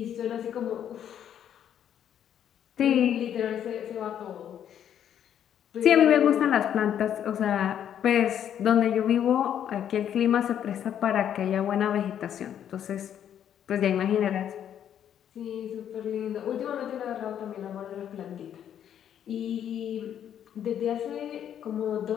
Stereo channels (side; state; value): right; quieter; 9.7 dB